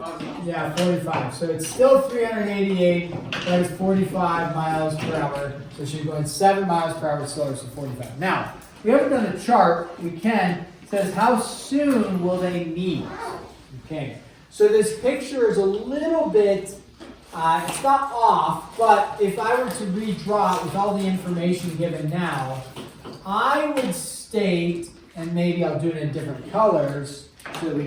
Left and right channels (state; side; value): identical; both; correlation 1.00